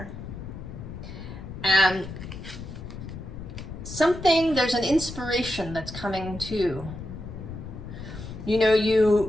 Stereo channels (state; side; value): noise; left; rumble, 10 dB below the sound